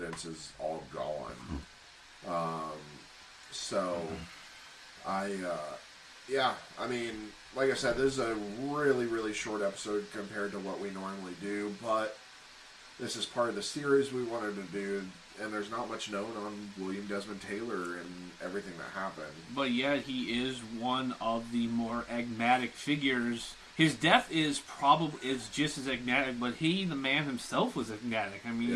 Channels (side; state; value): both; identical; correlation 1.00